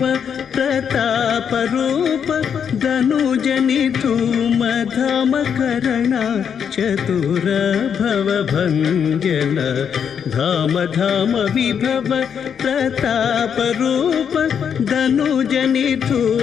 ప్రతాప రూప ధనుజని ధూమ ధామ కరణ చతుర భవ భంజన. ధామ ధామ విభవ ప్రతాప రూప ధనుజని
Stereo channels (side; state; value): right; quieter; 7.6 dB